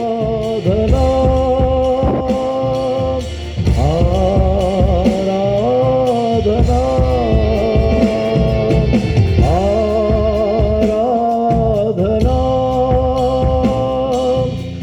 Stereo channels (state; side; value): identical; both; correlation 1.00